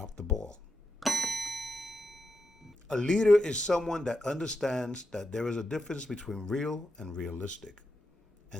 the ball. A leader is someone that understands that there is a difference between real and realistic,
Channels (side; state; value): both; normal; correlation 0.86